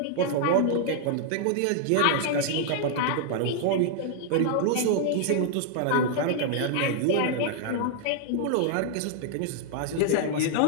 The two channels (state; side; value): different; both; correlation -0.01